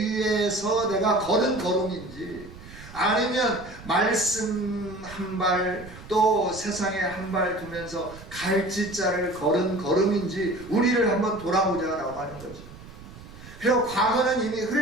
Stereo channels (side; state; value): right; noise; rumble, 17 dB below the sound